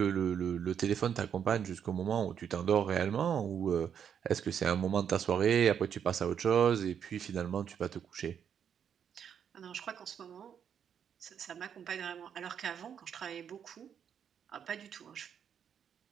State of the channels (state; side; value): quieter; left; 8.2 dB